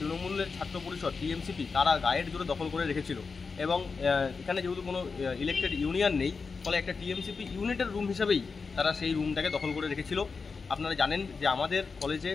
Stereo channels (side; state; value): right; quieter; 4.8 dB